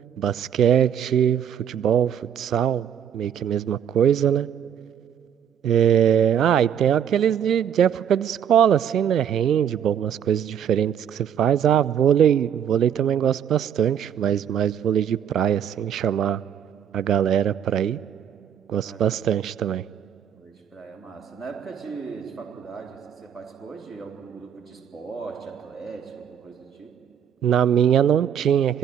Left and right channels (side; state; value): left; quieter; 8.8 dB